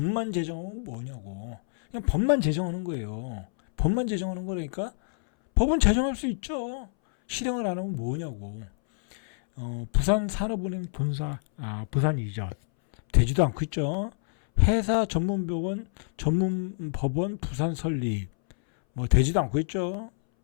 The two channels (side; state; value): right; silent; 60 dB below the other